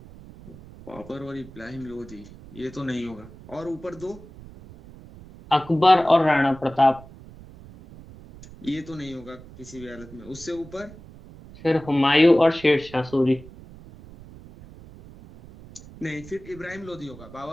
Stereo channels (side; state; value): right; noise; rumble, 19 dB below the sound